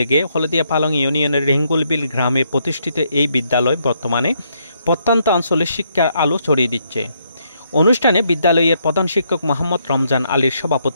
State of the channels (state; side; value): inverted; both; correlation -0.74